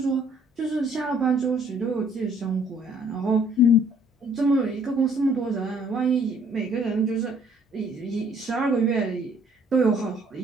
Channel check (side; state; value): both; normal; correlation 0.61